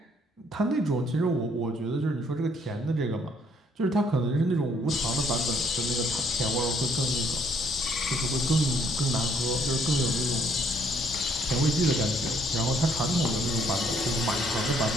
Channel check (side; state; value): both; normal; correlation 0.66